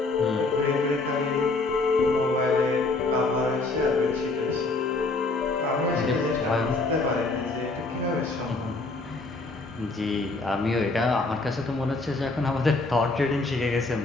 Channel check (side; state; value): right; quieter; 3.4 dB